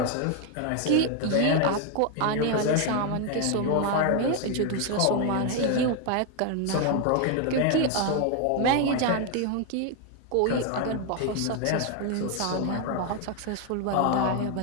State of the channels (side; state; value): both; different; correlation 0.01